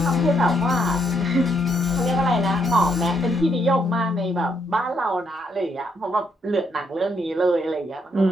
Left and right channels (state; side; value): normal; both; correlation 0.75